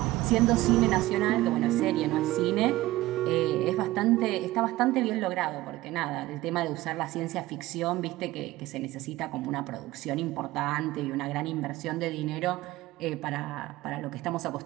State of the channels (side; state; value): left; quieter; 17.4 dB